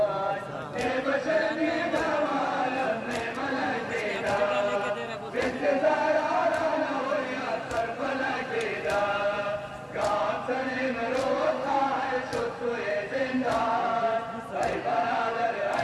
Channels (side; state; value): both; identical; correlation 1.00